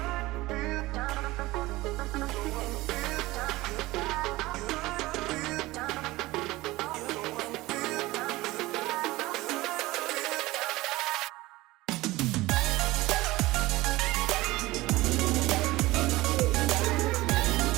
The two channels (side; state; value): left; quieter; 19.3 dB